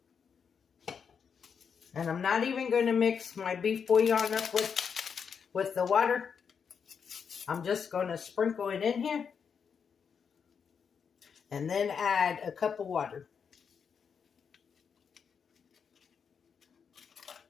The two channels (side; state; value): right; quieter; 6.6 dB